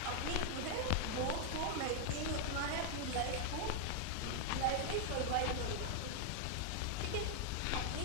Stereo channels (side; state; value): both; different; correlation 0.00